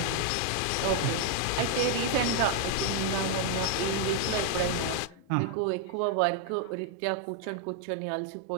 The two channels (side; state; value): both; different; correlation 0.00